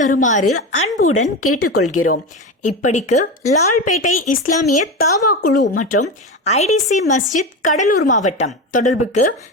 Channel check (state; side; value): normal; both; correlation 0.21